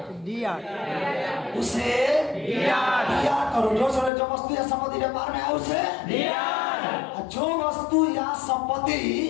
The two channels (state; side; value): drops out; right; at 4.1 s